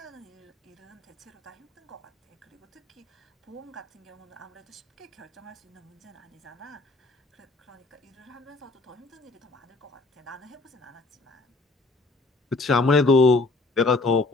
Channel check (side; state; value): right; quieter; 3.4 dB